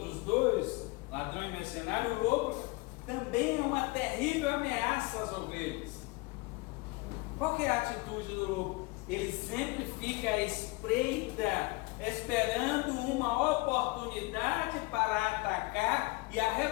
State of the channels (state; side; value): quieter; right; 24.5 dB